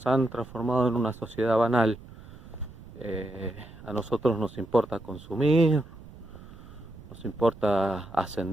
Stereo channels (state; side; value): noise; right; rumble, 18 dB below the sound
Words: han transformado en una sociedad banal. A nosotros nos importa consumir, nos importa